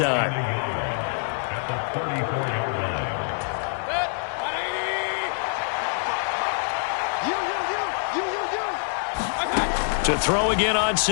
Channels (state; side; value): silent; right; 62 dB below the other